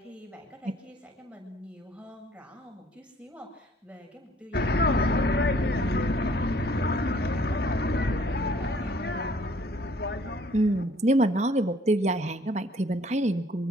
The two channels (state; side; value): normal; both; correlation 0.59